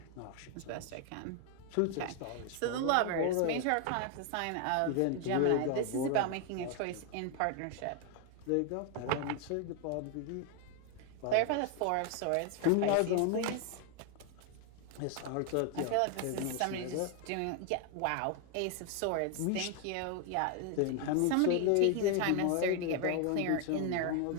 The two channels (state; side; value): different; both; correlation 0.01